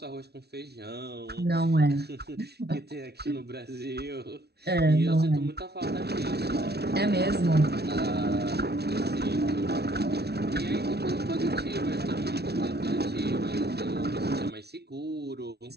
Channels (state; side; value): late; left; 0.48 ms